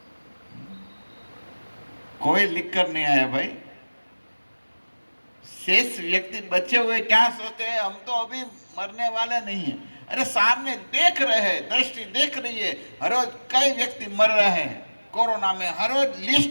कोई लिख कर नहीं आया भाई। शेष व्यक्ति बचे हुए क्या सोचते हैं? हम तो अभी मरने वाले नहीं हैं। अरे सामने देख रहे हैं, दृष्टि देख रही है, हर रोज कई व्यक्ति मर रहे हैं। कोरोना में हर रोज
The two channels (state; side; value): inverted; both; correlation -1.00